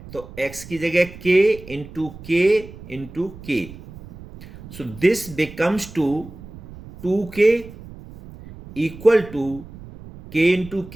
तो x की जगह k into k. So this becomes two 2k equal to k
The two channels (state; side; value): noise; right; rumble, 16 dB below the sound